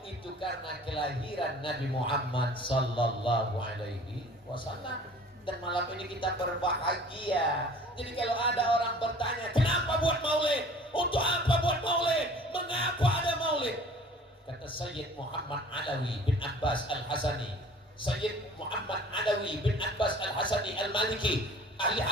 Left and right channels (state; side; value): normal; both; correlation 0.48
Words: Itu karena kelahiran Nabi Muhammad sallallahu alaihi wasallam. Dan malam ini kita berbahagia. Jadi kalau ada orang bertanya, kenapa buat maulid? Untuk apa buat maulid? Mengapa ada maulid? Kata Sayyid Muhammad Alawi bin Abbas Al-Hasani, Sayyid Muhammad Adawi bin Abbas Al-Hasani Al-Maliki, ahli